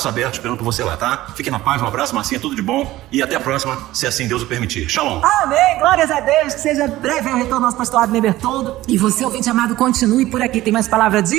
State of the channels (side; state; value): left; quieter; 16.2 dB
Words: abertos esperando por você lá, tá? Fique na paz, um abraço, Marcinha, tudo de bom. E até a próxima, se assim Deus o permitir. Shalom! Amém, glórias a Deus, que seja breve o retorno do nosso pastor Abner Bertoldo. E você, ouvinte amado, continue por aqui, tem mais palavra de